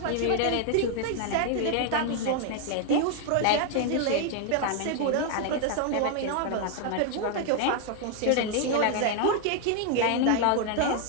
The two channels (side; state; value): both; different; correlation 0.00